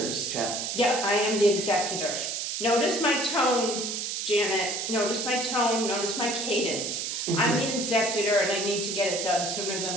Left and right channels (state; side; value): noise; right; hiss, 3 dB below the sound